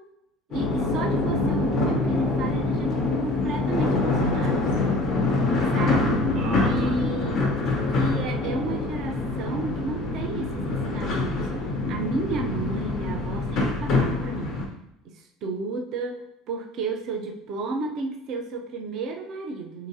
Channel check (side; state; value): both; normal; correlation 0.45